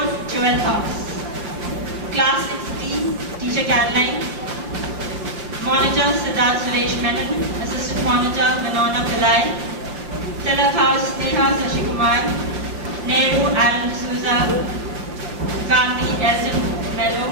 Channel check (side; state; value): left; late; 6.0 ms